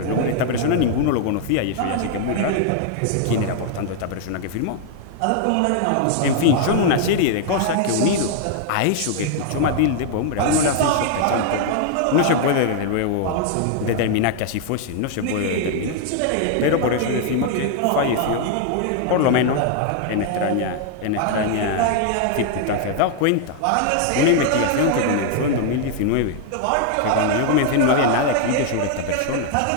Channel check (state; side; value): different; both; correlation 0.00